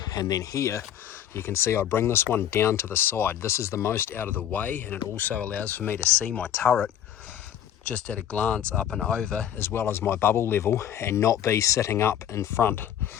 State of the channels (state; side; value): quieter; right; 10.4 dB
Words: And then here, you can see I bring this one down to the side. This is the most out of the way, and it also allows for me to see my turret just at a glance up and over, as well as my bubble level, and not be sitting up in front,